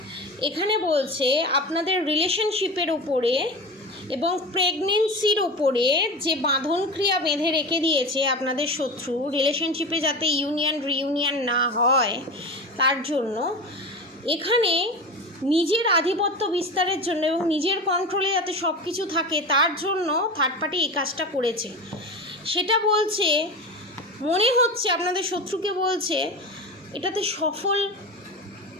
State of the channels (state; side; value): normal; both; correlation 0.28